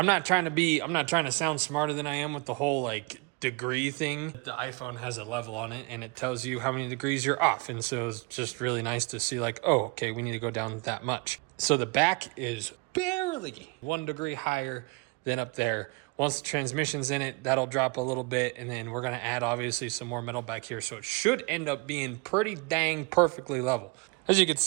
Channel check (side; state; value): left; quieter; 29.8 dB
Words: not trying to sound smarter than I am with the whole like degree thing. The iPhone has a level on it and it tells you how many degrees you're off. And so it's just really nice to see like, oh, okay, we need to go down that much. So the back is barely 1 degree higher than up there. Once the transmission's in it, that'll drop a little bit. And then we're gonna add obviously some more metal back here. So it should end up being pretty dang perfectly level. As you can